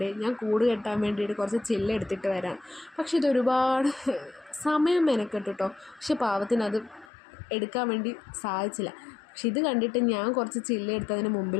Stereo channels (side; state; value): right; drops out; at 7.1 s